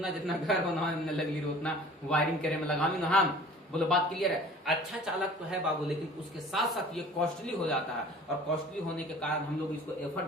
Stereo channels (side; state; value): both; normal; correlation 0.46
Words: जितना घर बनाने लगी रहो उतना वायरिंग करे में लगामी ना। हम बोलो बात क्लियर है। अच्छा चालक तो है बाबू, लेकिन उसके साथ साथ ये कॉस्टली हो जाता है, और कॉस्टली होने के कारण हम लोग इसको